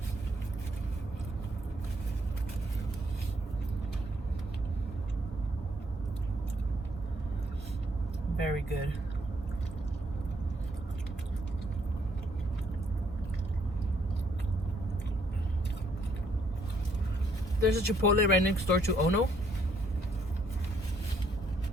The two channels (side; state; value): both; normal; correlation 0.69